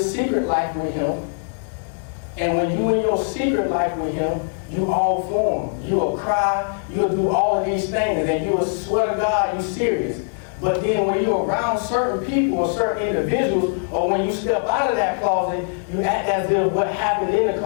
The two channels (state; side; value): silent; right; digital silence